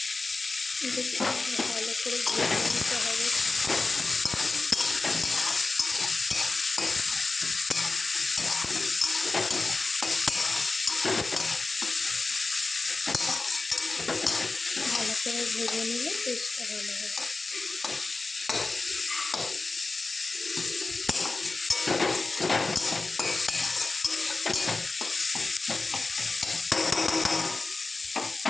ভালো করে ভেজে নিতে হবে। ভালো করে ভেজে নিলে টেস্টটা ভালো হবে।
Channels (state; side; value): quieter; right; 3.5 dB